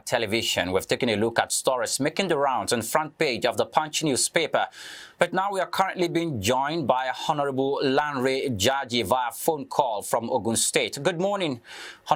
Television. We've taken a look at stories making the rounds on the front page of the Punch newspaper. But now we are currently being joined by Honorable Lanre Jaji via phone call from Ogun State. Good morning,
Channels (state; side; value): identical; both; correlation 1.00